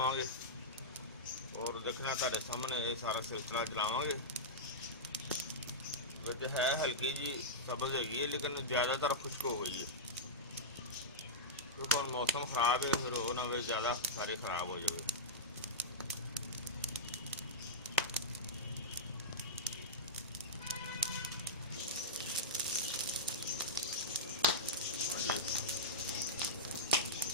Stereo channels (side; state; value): both; normal; correlation -0.11